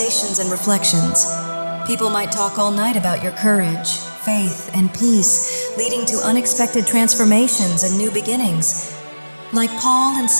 and reflections. People might talk all night about your courage, faith, and peace, leading to unexpected transformations and new beginnings. Like Paul and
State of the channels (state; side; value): inverted; both; correlation -1.00